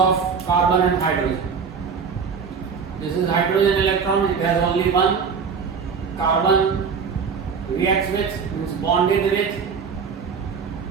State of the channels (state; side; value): quieter; left; 6.0 dB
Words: carbon and hydrogen. This is hydrogen electron, it has only one. Carbon reacts with, means bonded with,